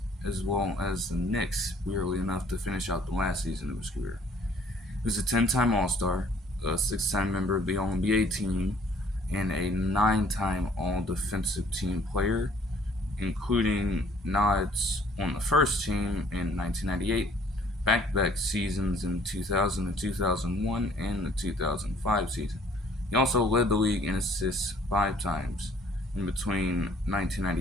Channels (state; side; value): normal; both; correlation 0.58